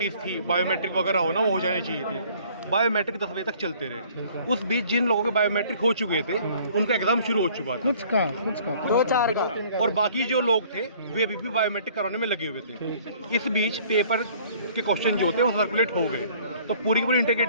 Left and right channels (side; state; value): both; inverted; correlation -0.55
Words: थी, बायोमेट्रिक वगैरह होना, वो हो जानी चाहिए थी। बायोमेट्रिक 10 बजे तक चलते रहे। उस बीच जिन लोगों के बायोमेट्रिक हो चुके थे उनका एग्ज़ाम शुरू हो चुका था, कुछ का 2-4 का, और बाकी जो लोग थे वे अभी भी बायोमेट्रिक कराने में लगे हुए थे। इस बीच पेपर के क्वेश्चन जो थे वो सर्कुलेट हो गए, तो पूरी की पूरी